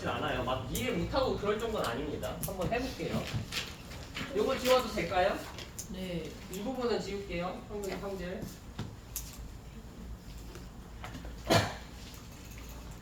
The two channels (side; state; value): both; identical; correlation 1.00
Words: 않아요. 막 이해 못하고 그럴 정도는 아닙니다. 한번 해볼게요. 요거 지워도 될까요? 네. 이 부분은 지울게요. 형질.